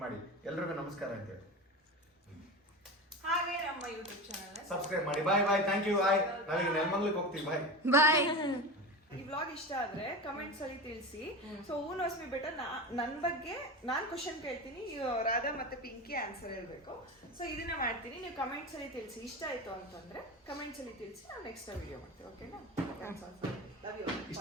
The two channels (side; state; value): both; normal; correlation 0.26